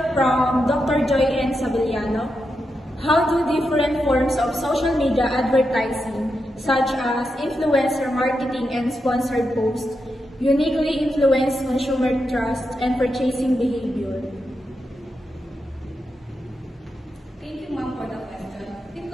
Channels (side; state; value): both; normal; correlation 0.86